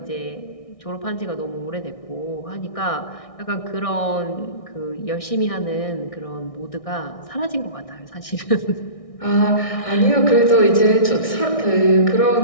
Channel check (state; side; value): late; right; 1.6 ms